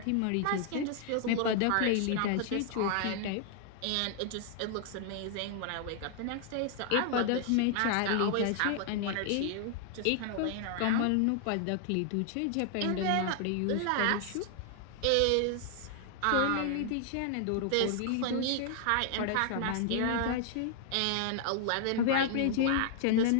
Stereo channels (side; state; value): both; different; correlation 0.00